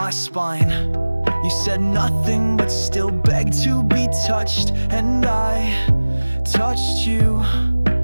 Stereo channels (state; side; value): inverted; both; correlation -1.00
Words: spine. You said nothing, but still begged to be touched, and I touched you